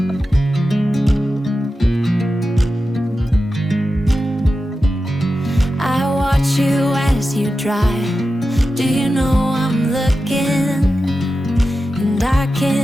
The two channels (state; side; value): normal; both; correlation 0.92